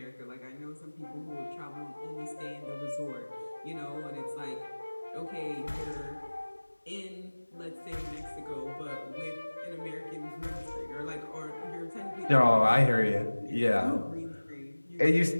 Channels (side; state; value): both; inverted; correlation -1.00